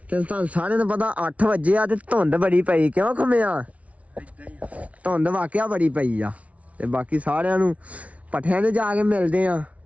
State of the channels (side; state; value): left; late; 0.066 ms